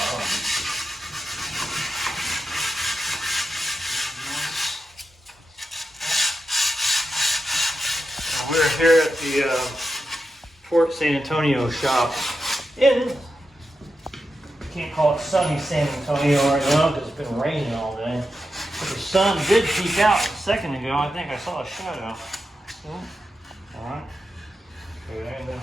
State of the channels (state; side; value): normal; both; correlation 0.88